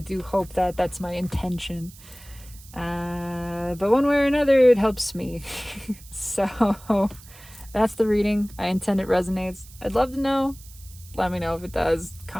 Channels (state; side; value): noise; right; hiss, 21 dB below the sound